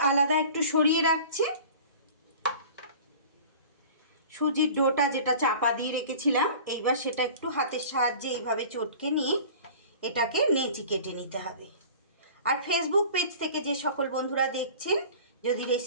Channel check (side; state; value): both; inverted; correlation -0.42